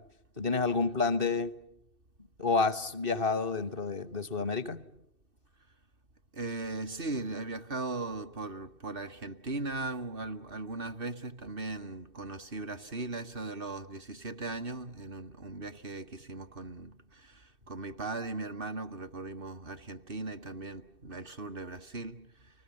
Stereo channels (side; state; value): left; late; 2.6 ms